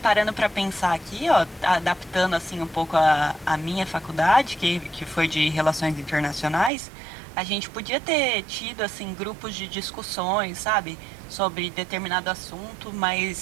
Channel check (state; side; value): drops out; left; at 6.7 s